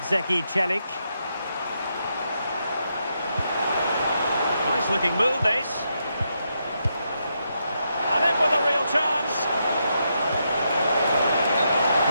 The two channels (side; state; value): both; inverted; correlation -0.81